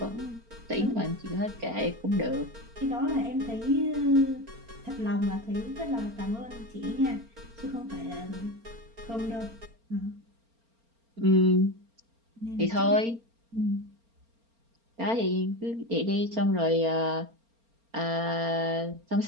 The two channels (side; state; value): left; late; 4.3 ms